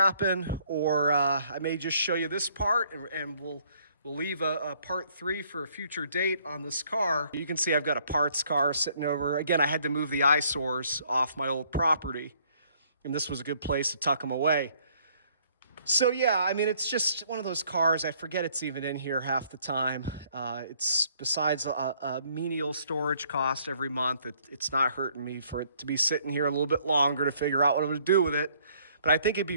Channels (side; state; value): both; inverted; correlation -0.64